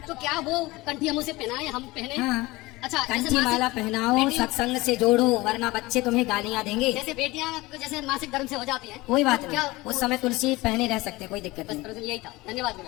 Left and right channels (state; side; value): quieter; right; 20.8 dB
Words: तो क्या वो कंठी हम उसे पहनाए, हम पहने? हाँ। अच्छा जैसे कंठी मासिक- माला पहनाओ, बेटी- सत्संग से जोड़ो, वरना बच्चे तुम्हें गालियाँ देंगे। जैसे बेटियां जैसे मासिक धर्म से हो जाती हैं, कोई बात तो नहीं, क्या उस समय तुलसी पहने रह सकते, कोई दिक्कत बस नहीं। प्रश्न यही था। धन्यवाद